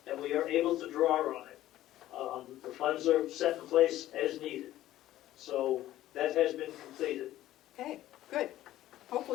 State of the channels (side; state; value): right; quieter; 14.2 dB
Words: and we are able to draw on it. The funds are set in place as needed. So that has been completed. Okay, good.